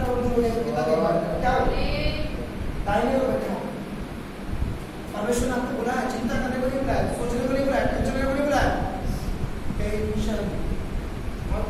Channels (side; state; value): both; identical; correlation 1.00